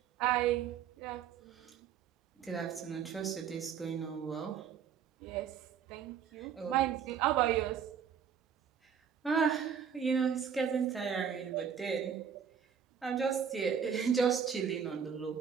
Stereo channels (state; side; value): quieter; left; 7.7 dB